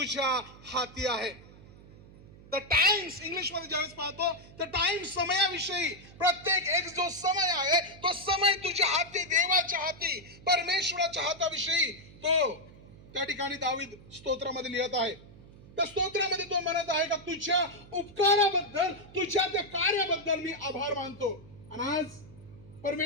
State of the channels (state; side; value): noise; right; hum, 20 dB below the sound